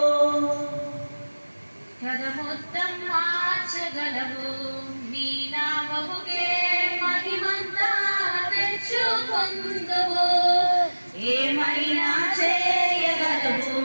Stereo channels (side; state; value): both; inverted; correlation -1.00